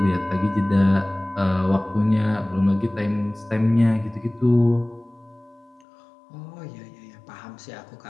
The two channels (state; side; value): drops out; right; at 5.9 s